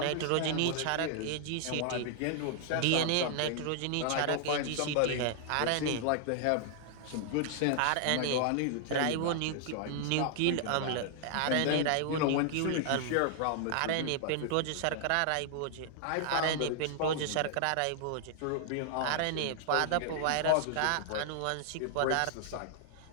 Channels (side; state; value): both; different; correlation 0.00